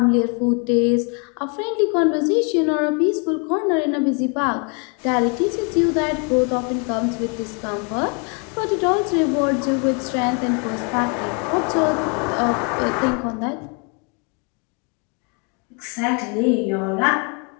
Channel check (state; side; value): quieter; right; 35.8 dB